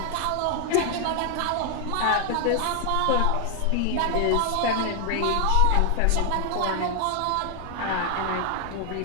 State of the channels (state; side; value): different; both; correlation 0.00